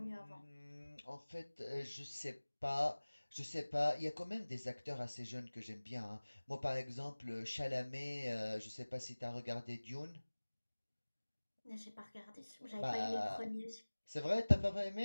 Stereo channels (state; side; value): inverted; both; correlation -1.00